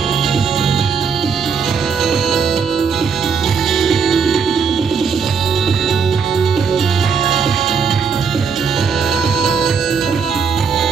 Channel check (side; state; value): left; quieter; 6.0 dB